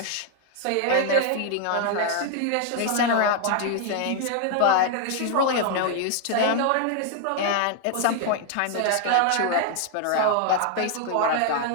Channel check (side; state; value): both; different; correlation 0.00